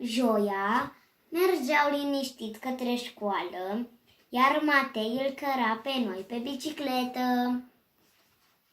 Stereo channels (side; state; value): both; identical; correlation 1.00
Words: mergeau liniștit către școală, iar Matei îl căra pe noi pe bicicletă.